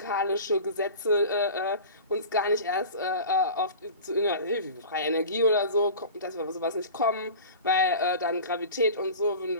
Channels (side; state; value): both; inverted; correlation -0.37